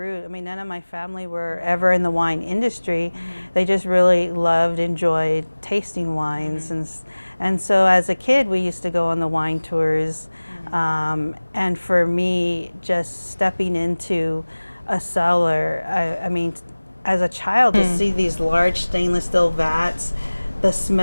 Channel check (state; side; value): inverted; both; correlation -1.00